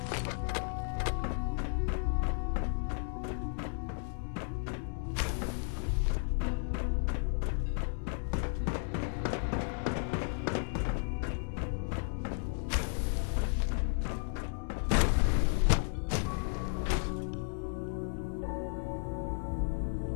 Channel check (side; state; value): right; silent; 55 dB below the other